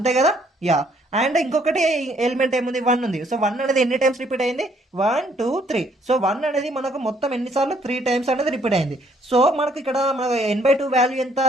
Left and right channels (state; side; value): normal; both; correlation 0.66